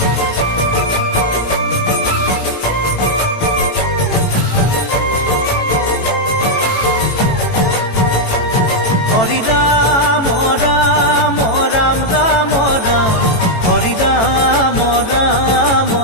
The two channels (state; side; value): late; right; 18 ms